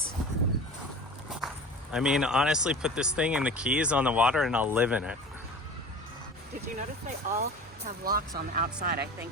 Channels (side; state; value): both; normal; correlation 0.37